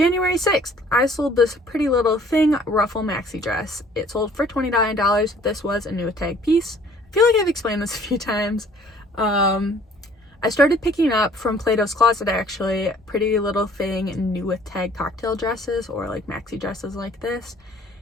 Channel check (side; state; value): both; normal; correlation 0.56